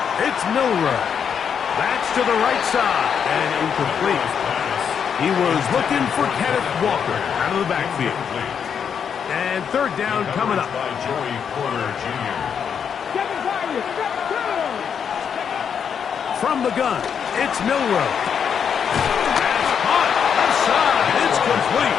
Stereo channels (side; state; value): right; quieter; 7.4 dB